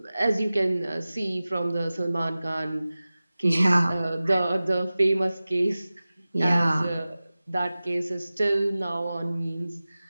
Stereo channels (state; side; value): inverted; both; correlation -0.97